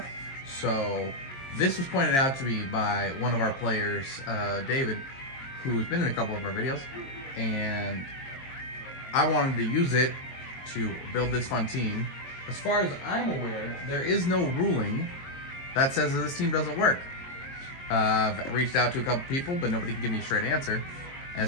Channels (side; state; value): right; late; 22 ms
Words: So this was pointed out to me by one of our players, David, who's been in a couple of our videos, and I wanted to use it to build this fun team. As far as I'm aware, there is no ruling that says that this team doesn't work. I've reached out to a couple people, but nobody can give me a straight answer.